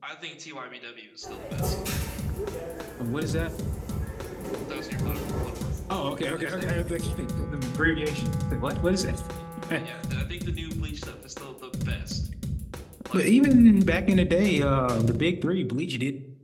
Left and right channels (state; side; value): identical; both; correlation 1.00